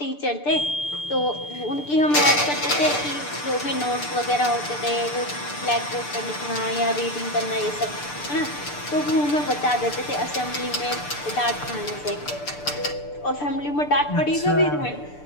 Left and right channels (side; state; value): right; late; 6.8 ms